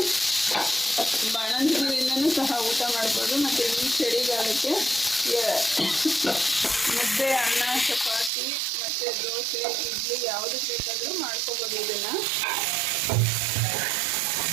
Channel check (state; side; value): drops out; left; at 8.3 s